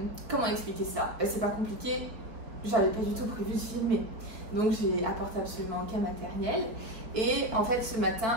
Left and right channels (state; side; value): late; left; 4.4 ms